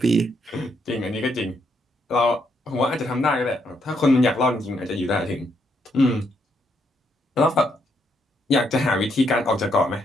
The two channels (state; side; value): normal; both; correlation 0.75